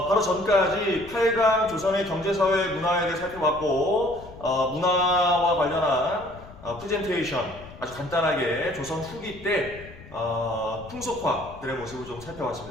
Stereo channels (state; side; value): noise; left; rumble, 18 dB below the sound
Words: 바로 전까지 8강 조선의 경제사회 문화에 대해 살펴봤고 문화와 관련한 프레젠테이션 아주 간단하게 조선 후기 때 풍속화들의 모습을 좀